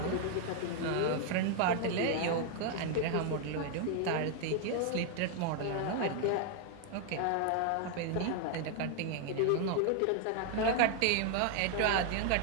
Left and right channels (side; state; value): both; different; correlation 0.00